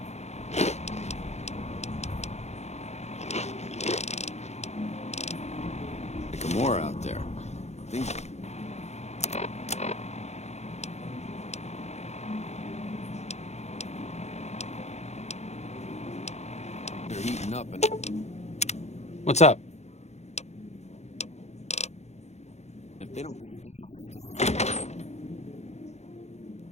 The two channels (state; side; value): late; right; 0.32 ms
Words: More out there. Things... They're heating up and... What's up? If they don't...